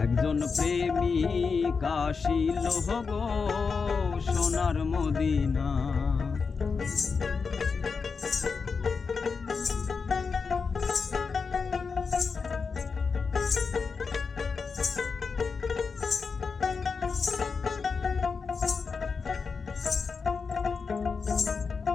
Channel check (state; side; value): quieter; right; 5.1 dB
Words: একজন প্রেমিক আসিল গো সোনার মদিনা।